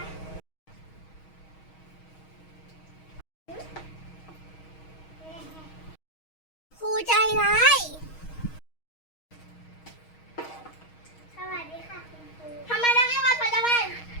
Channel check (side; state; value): right; late; 6.3 ms